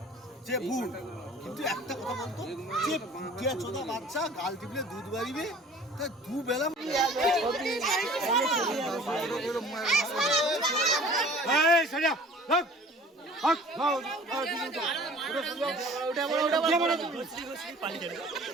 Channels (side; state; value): both; normal; correlation 0.48